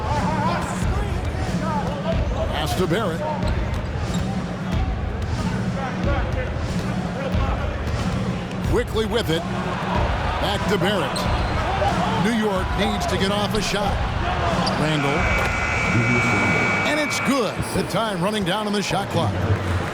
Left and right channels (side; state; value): both; identical; correlation 1.00